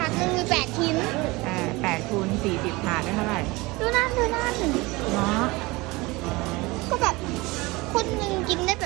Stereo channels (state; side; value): quieter; left; 22.9 dB